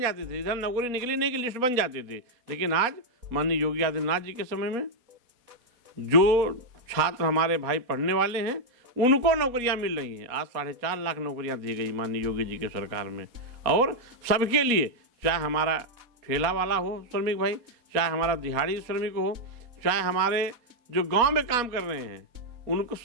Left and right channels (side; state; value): left; late; 4.2 ms